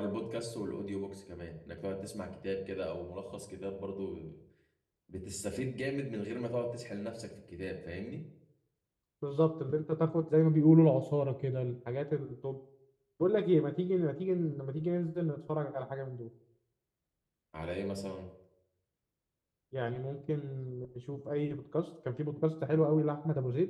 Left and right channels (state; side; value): identical; both; correlation 1.00